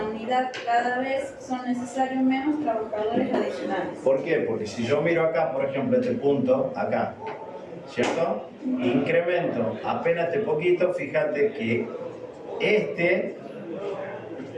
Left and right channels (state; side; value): identical; both; correlation 1.00